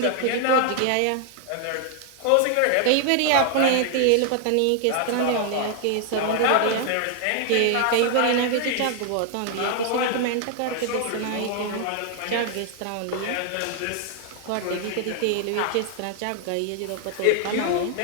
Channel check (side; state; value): both; different; correlation 0.00